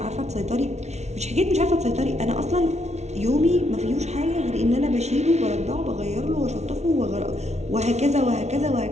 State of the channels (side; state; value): left; late; 0.32 ms